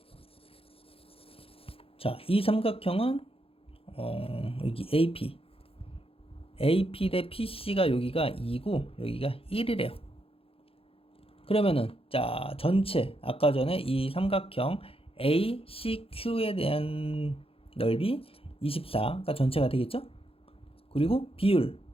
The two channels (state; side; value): late; right; 0.27 ms